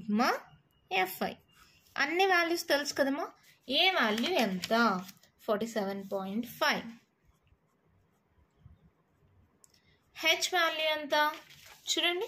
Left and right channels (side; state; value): both; identical; correlation 1.00